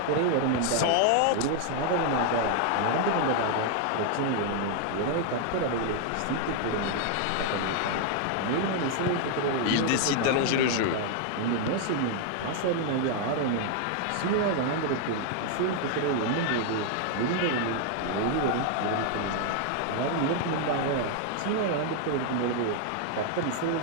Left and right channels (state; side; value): different; both; correlation 0.00